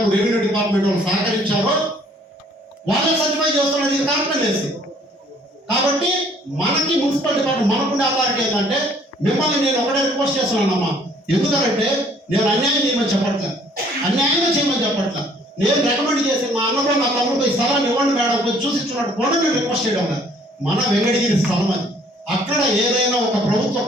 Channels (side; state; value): both; normal; correlation 0.59